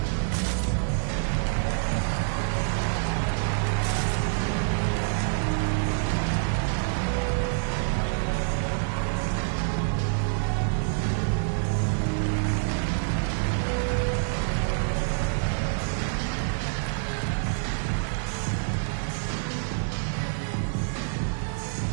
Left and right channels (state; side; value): silent; left; digital silence